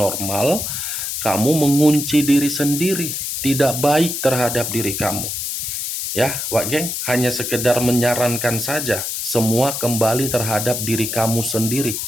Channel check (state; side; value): noise; left; hiss, 3 dB below the sound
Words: kamu mengunci diri sendiri, tidak baik terhadap diri kamu. Ya, Wak Geng, hanya sekedar menyarankan saja, semua kembali terhadap diri kamu sendiri.